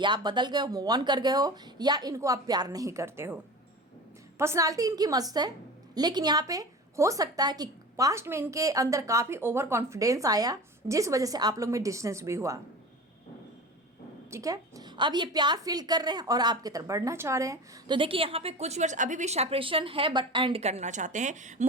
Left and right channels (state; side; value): normal; both; correlation 0.33